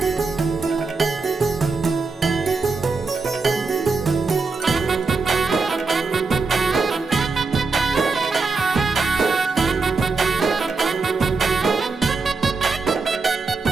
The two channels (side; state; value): left; quieter; 4.2 dB